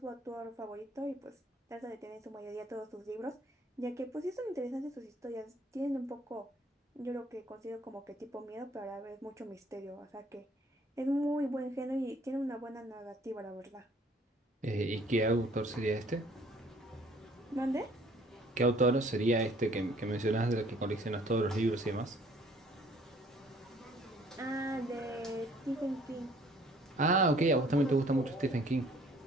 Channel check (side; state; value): both; normal; correlation 0.57